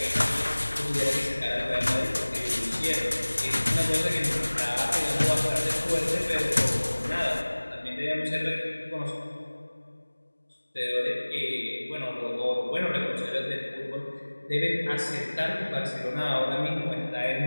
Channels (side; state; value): both; inverted; correlation -1.00